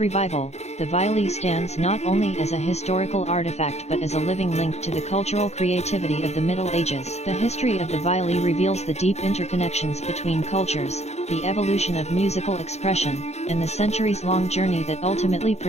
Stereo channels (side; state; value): right; late; 0.32 ms